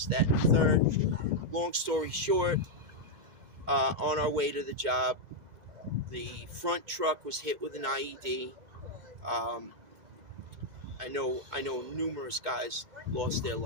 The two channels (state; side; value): late; left; 2.0 ms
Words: that, and the third. Long story short, on our way to the job, the front truck was hit with an IED. I know numerous guys lost their